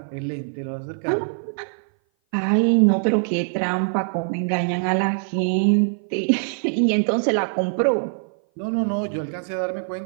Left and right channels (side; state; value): left; silent; 58 dB below the other